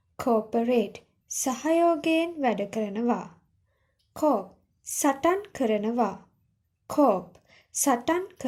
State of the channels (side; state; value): both; identical; correlation 1.00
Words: cooperate සහයෝගයෙන් වැඩ කරනවා cope සටන් කරනවා cope සටන්